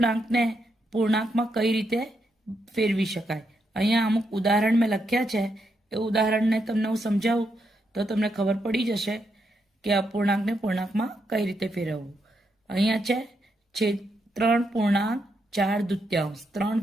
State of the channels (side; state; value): both; normal; correlation 0.81